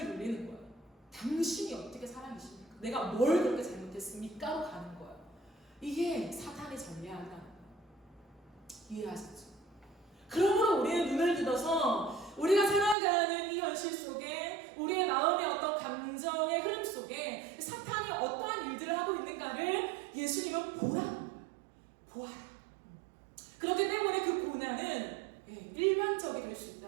돌리는 거예요. 당신이 어떻게 사람이십니까? 내가 뭘 그렇게 잘못했습니까?로 가는 거예요. 이게 사탄의 전략이라는 거예요. 이해하셨죠? 그러므로 우리는 눈을 들어서 우리가 살아가는 이 현실 속에 우리의 마음의 어떤 감정의 흐름 속에 사탄이 어떠한 일들을 하고 있는가를 예수님은 보라는 거예요. 보아라. 그렇기 때문에 그 고난은 일반적이 될 수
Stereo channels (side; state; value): left; drops out; at 13.0 s